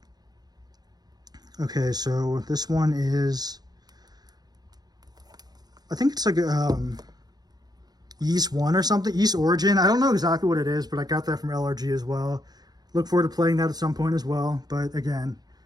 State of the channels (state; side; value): late; left; 0.19 ms